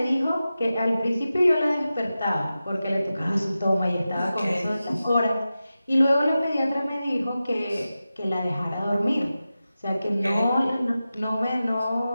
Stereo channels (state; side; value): inverted; both; correlation -0.94